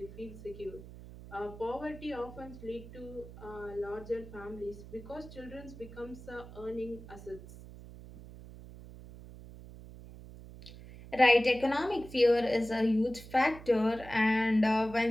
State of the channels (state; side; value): noise; right; hum, 16 dB below the sound